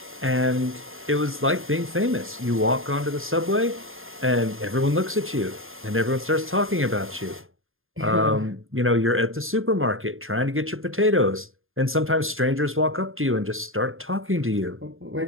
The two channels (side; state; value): left; late; 0.60 ms